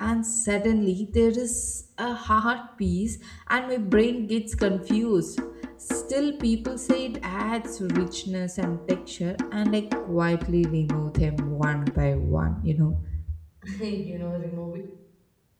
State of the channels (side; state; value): both; identical; correlation 1.00